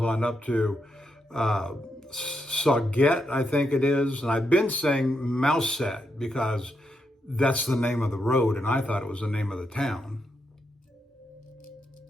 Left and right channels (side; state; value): both; normal; correlation 0.82